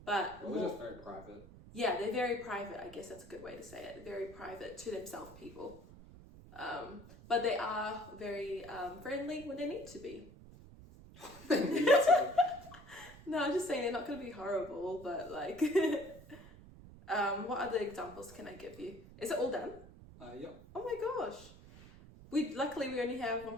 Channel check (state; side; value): noise; right; rumble, 18 dB below the sound